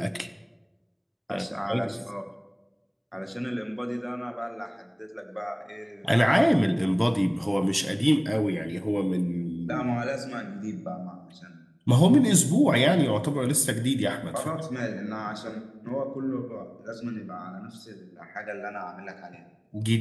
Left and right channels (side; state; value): both; identical; correlation 1.00